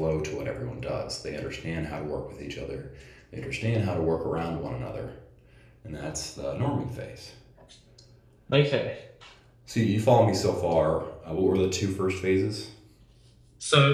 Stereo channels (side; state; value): both; identical; correlation 1.00